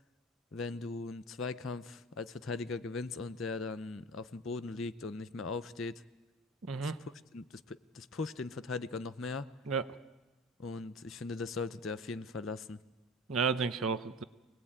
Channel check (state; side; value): normal; both; correlation 0.36